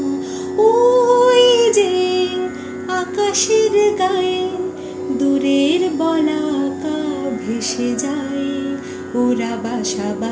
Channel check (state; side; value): identical; both; correlation 1.00